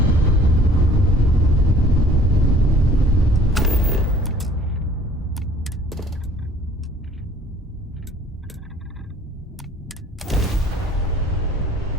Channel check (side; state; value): both; normal; correlation 0.54